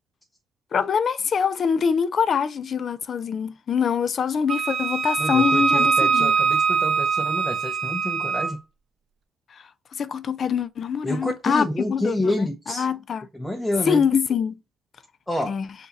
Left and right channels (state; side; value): normal; both; correlation 0.77